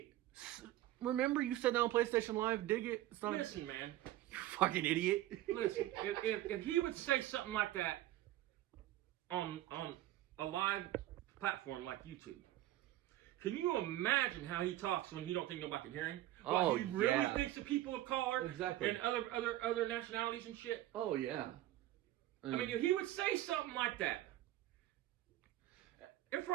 Remember you said that on PlayStation Live? Dig it. It's not. Listen, man. You fucking idiot. Listen, if he would say something like that on a live platform like YouTube, can you imagine how he talks when he don't think nobody can hear him? Oh, he really yeah. thinks of people of color Exactly. and other nationalities and shit. Oh yeah. I mean, if he would say something like that in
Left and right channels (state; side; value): quieter; left; 14.8 dB